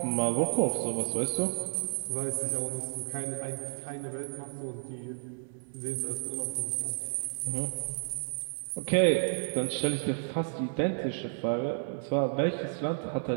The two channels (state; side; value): silent; left; 57 dB below the other